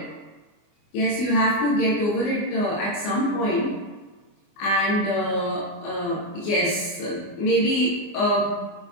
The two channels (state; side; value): late; right; 24 ms